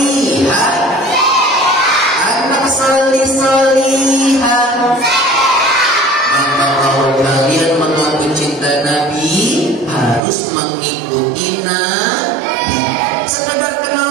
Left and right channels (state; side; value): drops out; left; at 10.2 s